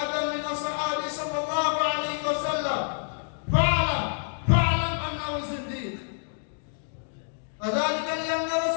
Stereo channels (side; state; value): right; silent; digital silence